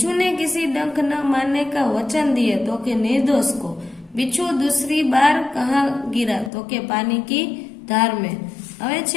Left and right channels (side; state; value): right; drops out; at 6.5 s